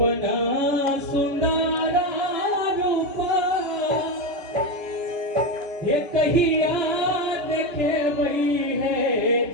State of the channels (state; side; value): late; left; 3.0 ms